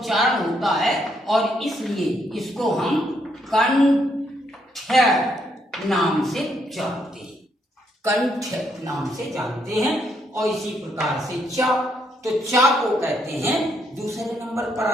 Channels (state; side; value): normal; both; correlation 0.74